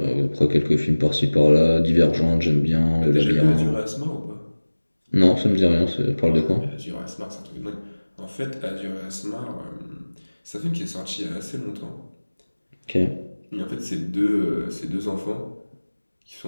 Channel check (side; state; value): both; inverted; correlation -1.00